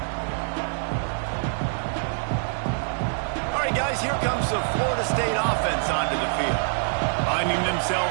All right, guys, here comes the Florida State offense onto the field. Finding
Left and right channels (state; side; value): silent; left; 62 dB below the other